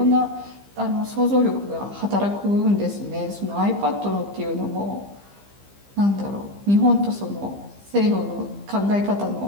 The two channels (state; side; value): late; left; 15 ms